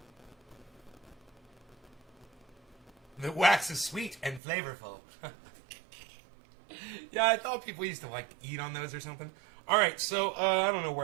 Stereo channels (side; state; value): left; drops out; at 4.4 s